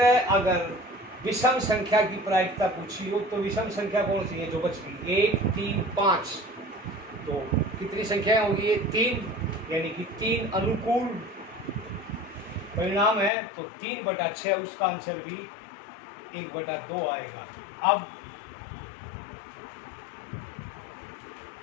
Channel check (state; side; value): drops out; right; at 13.3 s